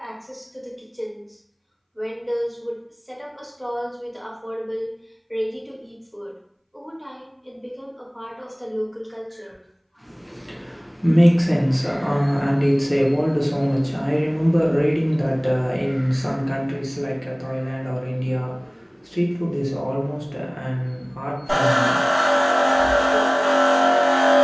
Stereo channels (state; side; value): identical; both; correlation 1.00